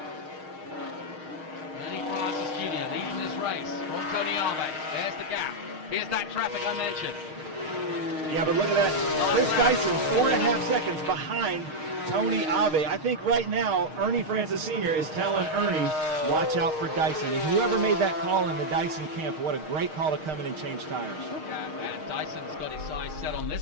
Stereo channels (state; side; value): late; left; 6.5 ms